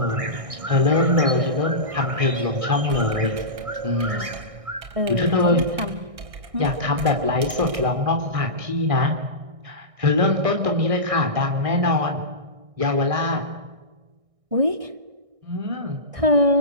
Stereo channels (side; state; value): left; late; 1.6 ms